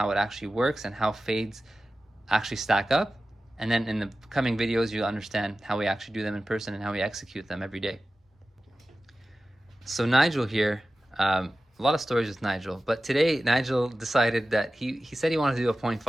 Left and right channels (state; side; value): normal; both; correlation 0.95